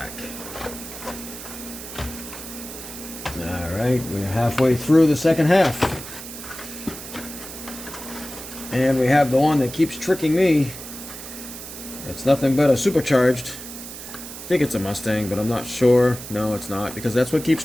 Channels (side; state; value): right; noise; hiss, 12 dB below the sound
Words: Alright, we're halfway through the second half. And we have the one that keeps tricking me. It's nothing but a supercharged. I think it's a Mustang, but I'm not sure. No, it's not, because that's what keeps